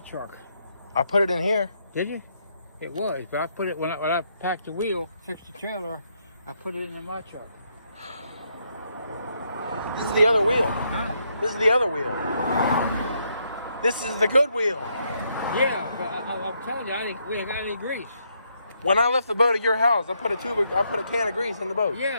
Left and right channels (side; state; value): both; inverted; correlation -0.76